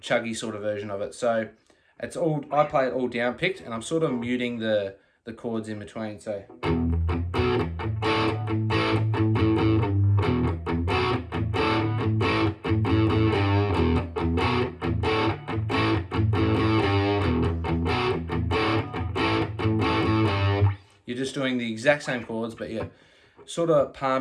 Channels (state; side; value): identical; both; correlation 1.00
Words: chuggy sort of version of it. So it's all, I play it all down picked, and I'm sort of muting the chords in between. So you're just doing the exact same chords, but you're sort of